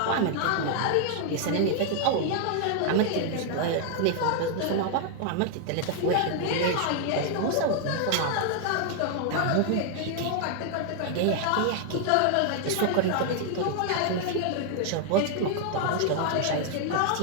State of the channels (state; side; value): different; both; correlation 0.00